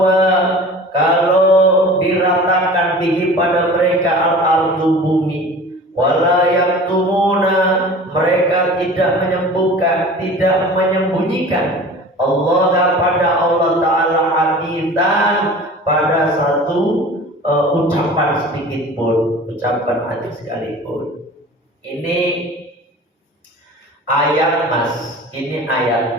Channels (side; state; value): both; normal; correlation 0.40